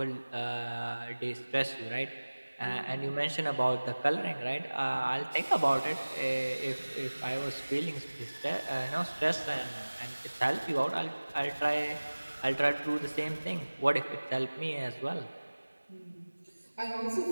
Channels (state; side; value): inverted; both; correlation -1.00